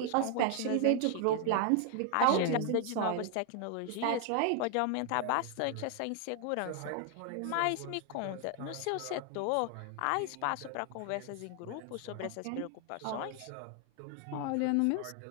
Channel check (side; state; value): both; different; correlation 0.00